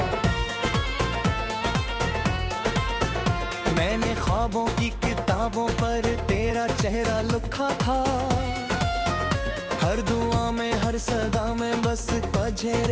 मैंने ख्वाबों की किताबों पर तेरा चेहरा लिखा था। हर दुआ में हर सदा में बस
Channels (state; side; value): identical; both; correlation 1.00